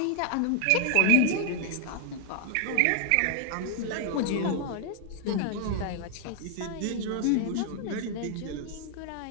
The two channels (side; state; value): both; different; correlation 0.00